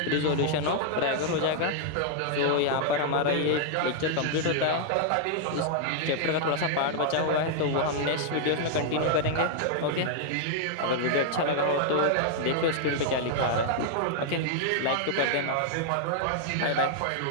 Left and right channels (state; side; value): different; both; correlation -0.01